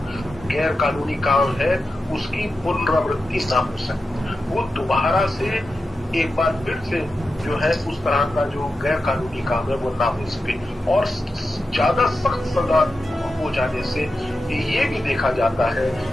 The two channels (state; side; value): normal; both; correlation 0.90